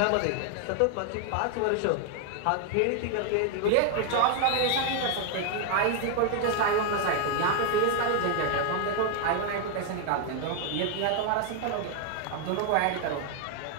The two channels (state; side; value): different; both; correlation 0.00